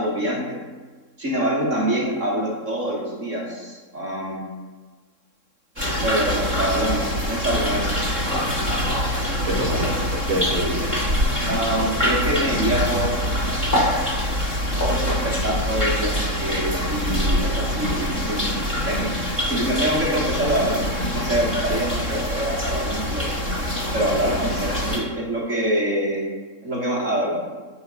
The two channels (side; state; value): left; late; 3.7 ms